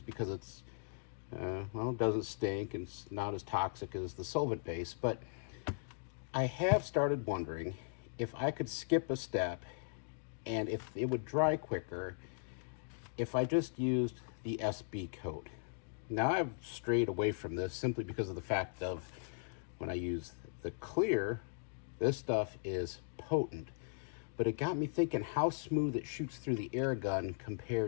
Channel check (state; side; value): silent; right; digital silence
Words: because it's, it doesn't stink and it's not as toxic as the solvent base, but I have started wondering if I could skip a step and if it would dry quicker if I just used the SB coat. Now I've strayed away from this simply because of the fact of when I use the clear, this stuff is potent. But it got me thinking how smooth it shoots through the air gun